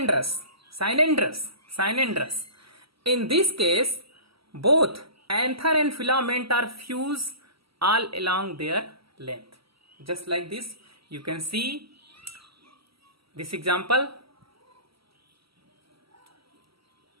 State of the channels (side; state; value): left; late; 0.75 ms